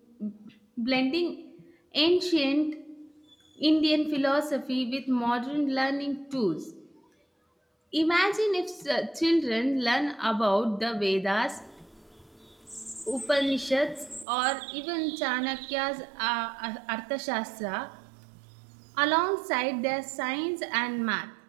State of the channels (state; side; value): drops out; left; at 14.2 s